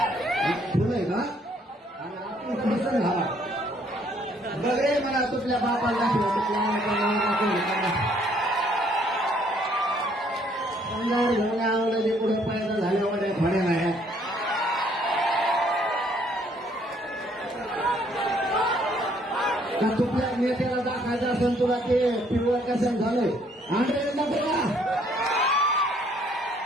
फुलं आहे का? आणि आपण फुलं झाला बघरे मला तुझल्या बापाला दाखव घेऊन आवलं ते पुढे पायदा झाले वडे फळे नाही. तुझल्या नेत्याला दाखायचं असेल तुला ते पिवळं कसं झालंय आंध्र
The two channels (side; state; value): both; normal; correlation 0.65